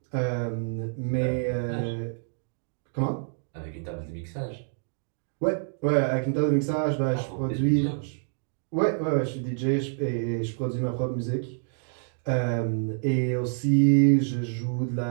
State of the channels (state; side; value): silent; left; digital silence